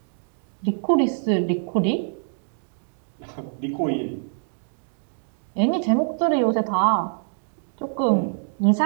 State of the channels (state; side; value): silent; left; digital silence